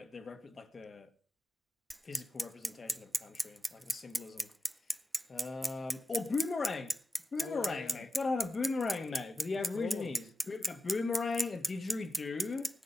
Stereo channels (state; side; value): normal; both; correlation 0.93